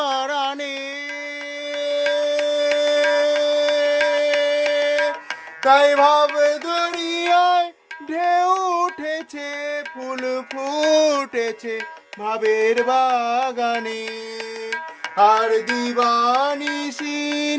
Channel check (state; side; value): identical; both; correlation 1.00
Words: তাই ভাব দরিয়ায় ঢেউ উঠেছে, ফুল ফুটেছে ভাবের বাগানে। আর দিবানিশি